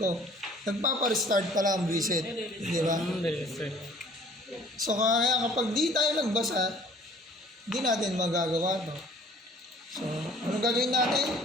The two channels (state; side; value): normal; both; correlation 0.52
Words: Nagpapa-restart pala ang reset. Di ba? So kaya kapag di tayo nagbasa, di natin magagawa to. So, ano gagawin natin?